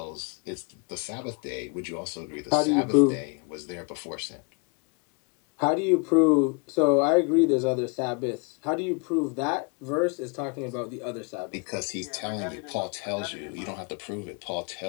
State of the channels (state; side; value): quieter; right; 32.8 dB